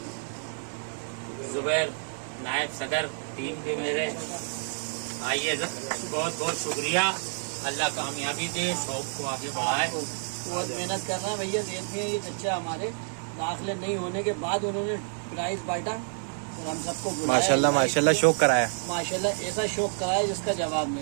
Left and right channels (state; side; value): silent; left; digital silence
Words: जुबैर नायब सदर टीम के मेरे आइए, बहुत बहुत शुक्रिया। अल्लाह कामयाबी दे, शौक को आगे बढ़ाए। बहुत मेहनत कर रहे हैं भैया। देखते हैं ये बच्चा हमारे दाखिले नहीं होने के बाद उन्होंने प्राइज बांटा और हम सबको माशाल्लाह माशाल्लाह शौक कराया। माशाल्लाह ऐसा शौक कराया जिसका जवाब